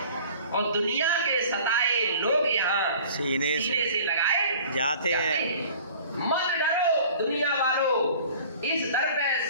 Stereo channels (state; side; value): inverted; both; correlation -0.47